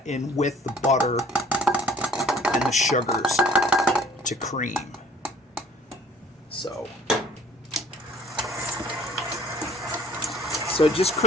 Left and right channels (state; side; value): normal; both; correlation 0.54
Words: in with the butter and the sugars to cream. So just